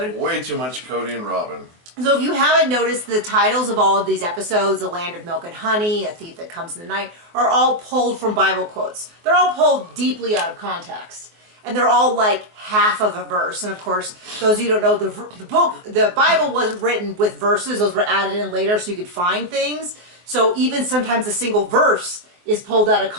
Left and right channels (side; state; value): left; late; 23 ms